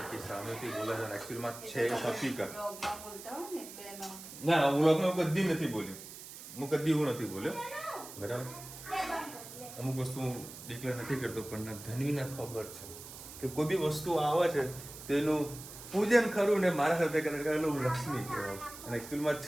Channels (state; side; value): noise; right; hiss, 14 dB below the sound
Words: સામેથી બોલે છે. એકચ્યુઅલમાં છે હકીકત. ના વ્લોગમાં કદી નથી બોલ્યો. હું કદી એવું નથી બોલ્યો બરાબર. અમુક વસ્તુ ડિક્લેર નથી કરતો પણ ધનવીને ખબર છે કે કોઈ બી વસ્તુ આવે છે તેનું પૂજન ખરું ને મારા સાથે કરેલું લક્ષ્મી કહેવાય અને એકચ્યુઅલમાં જ